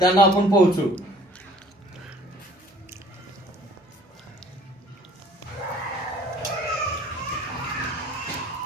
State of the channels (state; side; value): normal; both; correlation 0.54